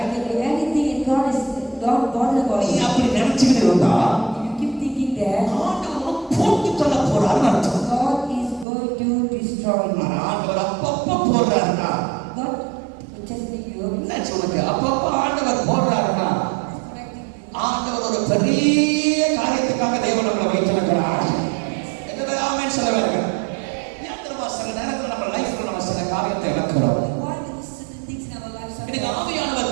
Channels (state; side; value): drops out; left; at 8.7 s